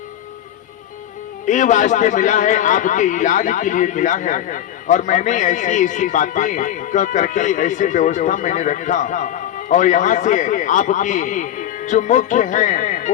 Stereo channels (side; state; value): right; quieter; 11.3 dB